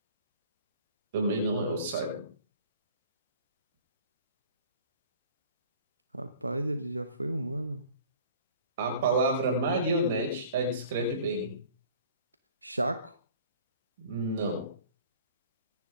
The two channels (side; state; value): both; inverted; correlation -0.48